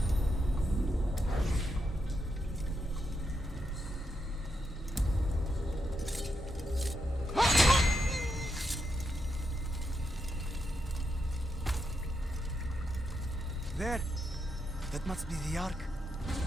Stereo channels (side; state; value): both; normal; correlation 0.83